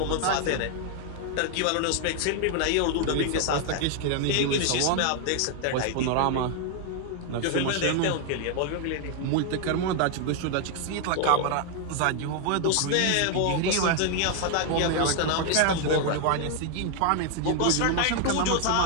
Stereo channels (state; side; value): different; both; correlation 0.00